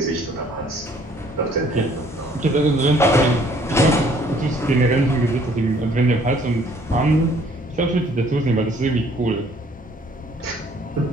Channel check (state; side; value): normal; both; correlation 0.60